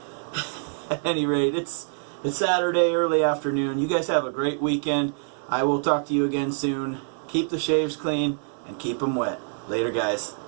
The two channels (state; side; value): silent; left; 61 dB below the other